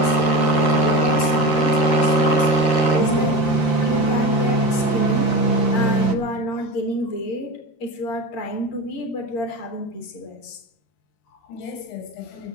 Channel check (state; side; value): late; right; 13 ms